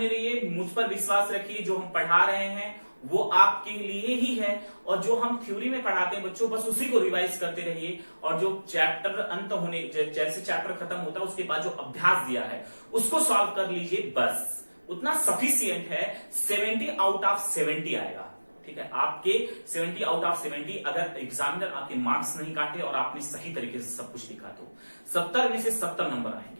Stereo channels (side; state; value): both; inverted; correlation -1.00